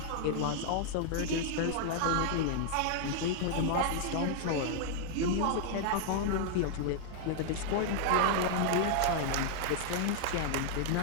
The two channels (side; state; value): both; different; correlation -0.01